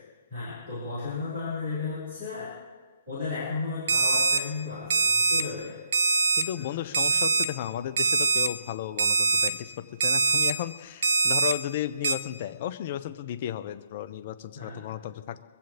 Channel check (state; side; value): inverted; both; correlation -0.74